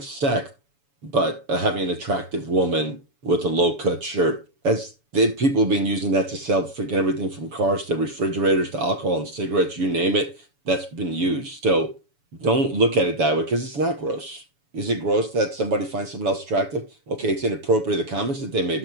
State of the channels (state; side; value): late; left; 7.0 ms